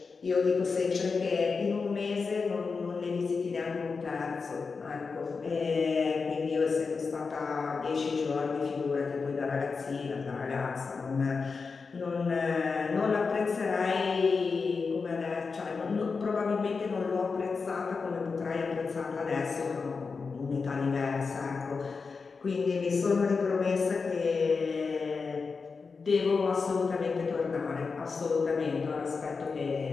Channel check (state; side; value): quieter; right; 4.8 dB